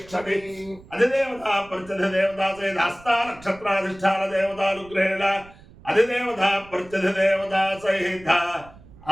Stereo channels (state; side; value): noise; right; rumble, 22 dB below the sound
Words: अधिदेवता प्रत्यधिदेवता सहित हस्ता नक्षत्राधिष्ठान देवतानुग्रहेण అధిదేవత ప్రత్యధిదేవత సహిత